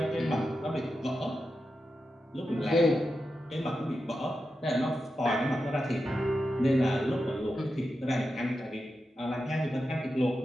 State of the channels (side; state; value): both; normal; correlation 0.89